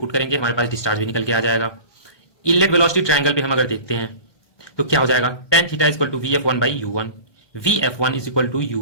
करेंगे, हमारे पास डिस्चार्ज भी निकल के आ जाएगा। इनलेट वेलोसिटी ट्रायंगल पे हम अगर देखते हैं तो क्या हो जाएगा, tan theta equal to VF1/U1, VF1 is equal to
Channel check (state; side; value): late; right; 1.2 ms